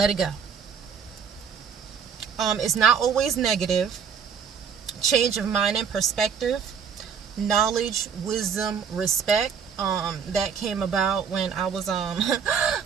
it go. It's not always negative. Change of mind and perspective. Knowledge, wisdom, respect. That came about when I was so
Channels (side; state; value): left; quieter; 6.9 dB